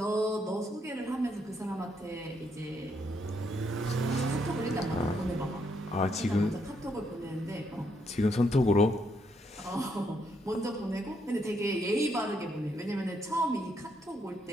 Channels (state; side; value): normal; both; correlation 0.75